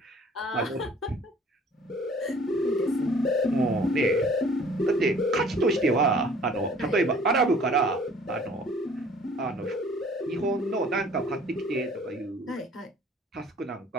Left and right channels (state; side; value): normal; both; correlation 0.53